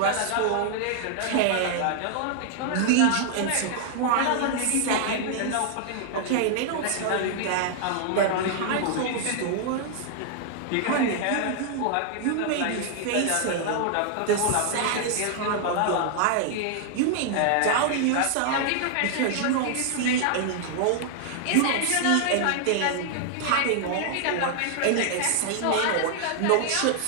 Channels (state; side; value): different; both; correlation 0.00